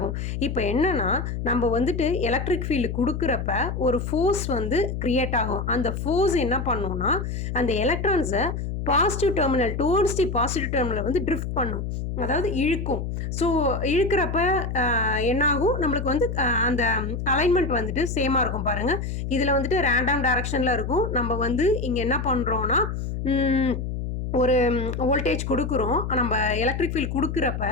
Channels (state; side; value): noise; left; hum, 4 dB below the sound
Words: இப்போ என்னன்னா நம்ம வந்துட்டு எலக்ட்ரிக் ஃபீல்டு கொடுக்குறப்ப ஒரு ஃபோர்ஸ் வந்து கிரியேட் ஆகும். அந்த ஃபோர்ஸ் என்ன பண்ணும்னா அந்த எலக்ட்ரான்ஸை positive terminal towards the positive terminal வந்து ட்ரிஃப்ட் பண்ணும், அதாவது இழுக்கும். ஸோ இழுக்கிறப்ப என்னாகும், நம்மளுக்கு வந்து அந்த அலைன்மெண்ட் வந்துட்டு சேமாக இருக்கும். பாருங்கள், இதில் வந்துட்டு ரேண்டம் டைரக்ஷனில் இருக்கும். நம்ம வந்து இங்கே என்ன பண்ணுறோன்னா ஒரு வோல்டேஜ் கொடுக்குறோம். நம்ம எலக்ட்ரிக் ஃபீல்டு கொடுக்குறப்ப